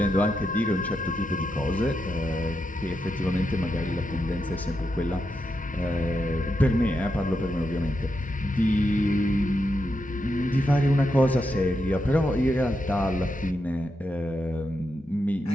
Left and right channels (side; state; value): both; normal; correlation 0.85